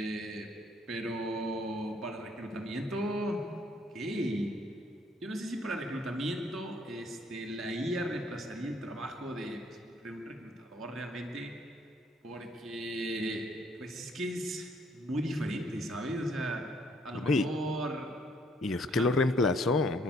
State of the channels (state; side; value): normal; both; correlation 0.64